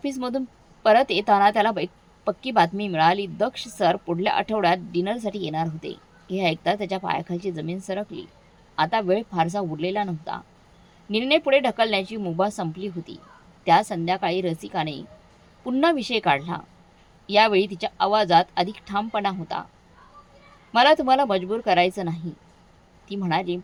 परत येताना त्याला पक्की बातमी मिळाली. दक्ष सर पुढल्या आठवड्यात डिनरसाठी येणार होते. हे ऐकता त्याच्या पायाखालची जमीन सरकली. आता वेळ फारसा उरलेला नव्हता. निर्णय पुढे ढकलण्याची मुभा संपली होती. त्या संध्याकाळी रसिकाने पुन्हा विषय काढला. यावेळी तिच्या आवाजात अधिक ठामपणा होता. मला तुम्हाला मजबूर करायचं नाही, ती म्हणाली,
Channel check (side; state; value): both; identical; correlation 1.00